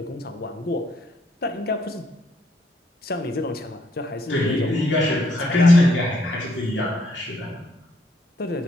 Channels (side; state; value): both; normal; correlation 0.70